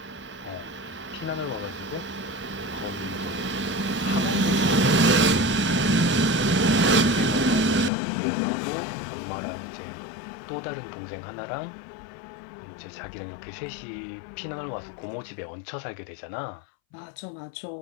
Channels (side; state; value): right; drops out; at 7.9 s